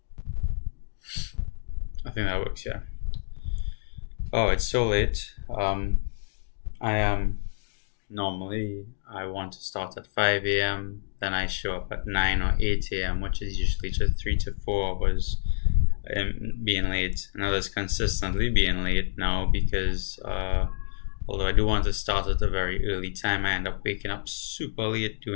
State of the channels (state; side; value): silent; right; digital silence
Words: I think that works. Yeah. Oh, it's so late. I am normally I want to start at 5 a.m. Then I show up at 9 or 8 a.m., which is usually just 3 to 4 hours being late. And I was consistently being late now because although I do want to start at a very early time, I end up waking up super late